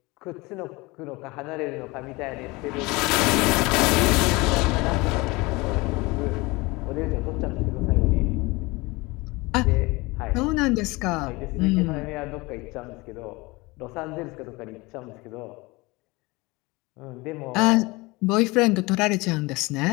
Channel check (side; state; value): right; quieter; 23.6 dB